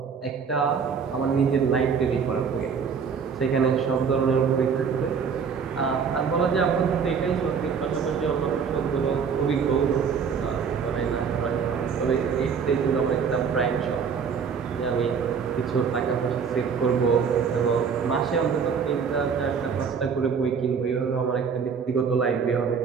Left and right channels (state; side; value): quieter; left; 6.3 dB